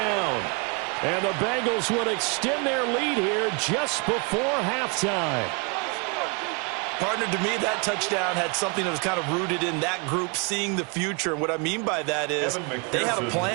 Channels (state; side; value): quieter; left; 32.6 dB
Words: And the Bengals would extend their lead here just before halftime. Partner, to me, that touchdown had something that was kind of rooted in that group seeing the future. And what I mean by that is they had a